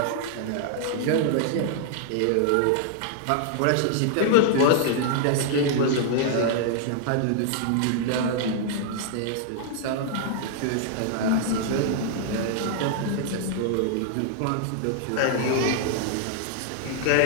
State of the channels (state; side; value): different; both; correlation -0.01